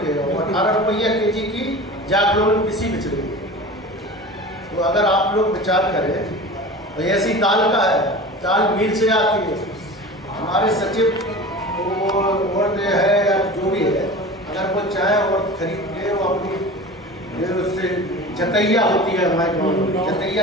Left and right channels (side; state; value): both; normal; correlation 0.35